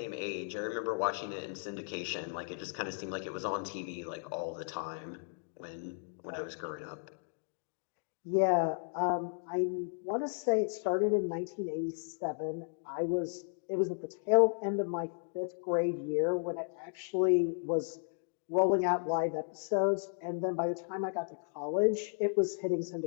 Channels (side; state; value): right; silent; digital silence